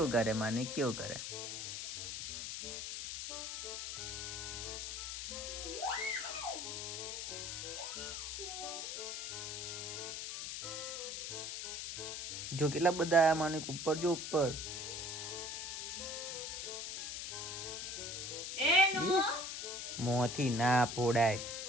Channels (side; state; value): left; noise; hiss, 5 dB below the sound